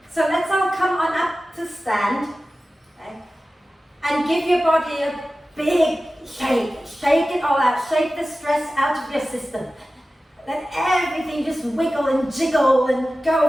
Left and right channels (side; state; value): both; normal; correlation 0.95